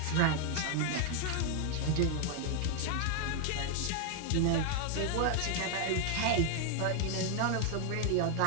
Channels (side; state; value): both; different; correlation 0.01